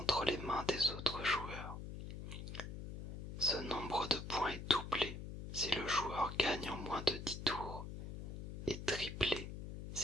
les mains des autres joueurs. Ce nombre de points est doublé si le joueur gagne en moins de 10 tours et triplé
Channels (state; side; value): noise; left; hum, 8 dB below the sound